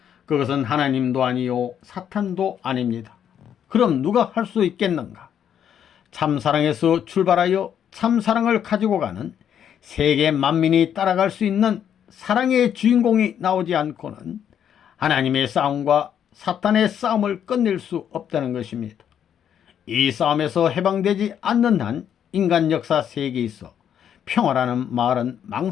그것은 하나님도 아니요 사탄도 아닙니다. 그럼 누가 할 수 있겠는가? 참사랑에서 출발하여 참사랑을 가지고 가는 세계 만민이 따라갈 수 있는 사랑의 주인공이 나오지 않고는 하나님의 싸움과 사탄의 싸움을 끝낼 수 없다는 것입니다. 이 싸움에서 해방되지 않는 한 인간 역사 세계에 있어 평화라는 말은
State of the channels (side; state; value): right; quieter; 9.1 dB